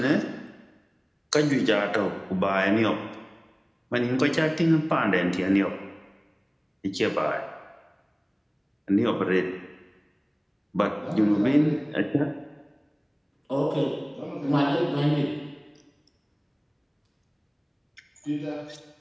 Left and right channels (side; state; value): both; identical; correlation 1.00